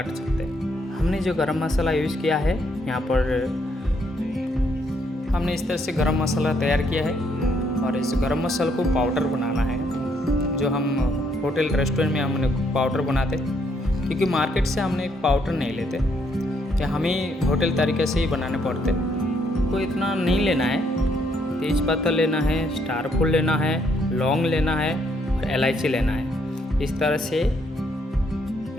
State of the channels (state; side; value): normal; both; correlation 0.72